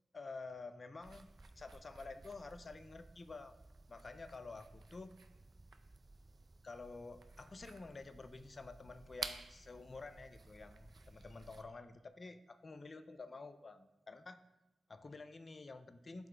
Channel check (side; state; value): both; normal; correlation 0.89